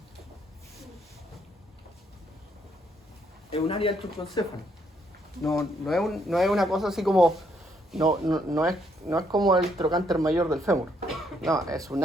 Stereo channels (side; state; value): both; normal; correlation 0.72